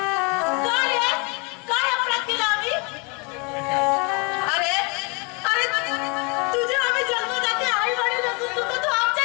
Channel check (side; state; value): right; quieter; 31.7 dB